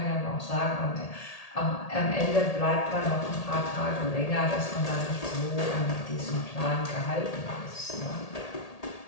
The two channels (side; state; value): right; late; 1.8 ms